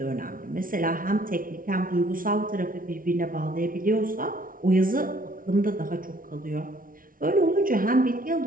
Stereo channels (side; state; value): left; late; 0.40 ms